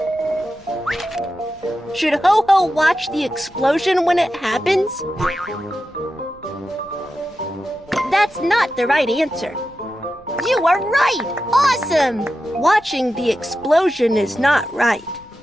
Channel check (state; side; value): noise; left; rumble, 26 dB below the sound